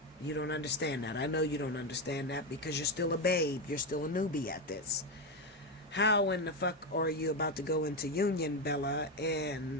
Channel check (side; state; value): both; normal; correlation 0.11